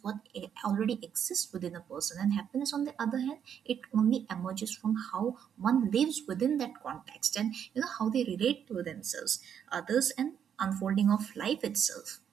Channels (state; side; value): quieter; left; 8.4 dB